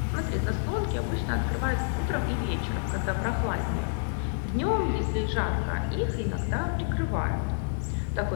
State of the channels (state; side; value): silent; right; digital silence